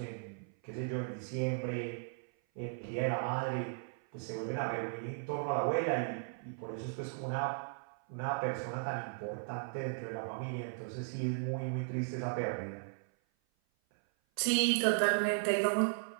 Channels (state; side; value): silent; left; 53 dB below the other